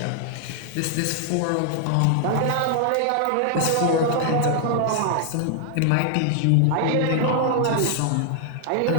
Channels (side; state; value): both; different; correlation 0.00